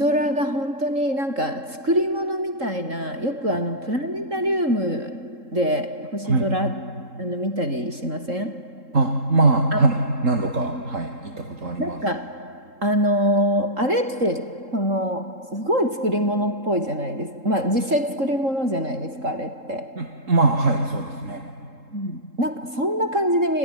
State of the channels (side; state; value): left; late; 3.7 ms